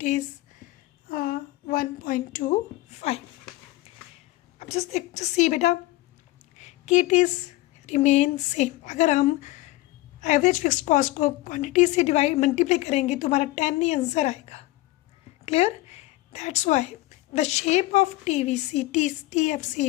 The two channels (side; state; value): right; quieter; 18.5 dB